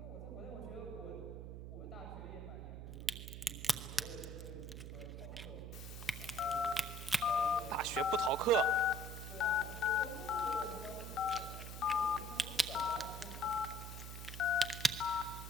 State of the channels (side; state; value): right; noise; hum, 9 dB below the sound